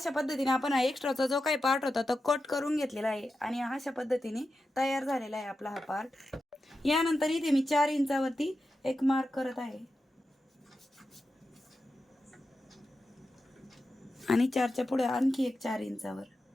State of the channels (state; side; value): normal; both; correlation 0.90